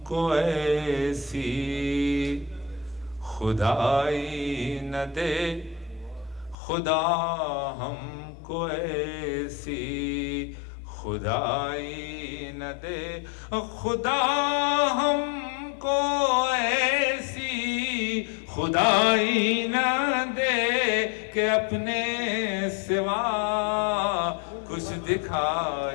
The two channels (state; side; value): drops out; right; at 6.6 s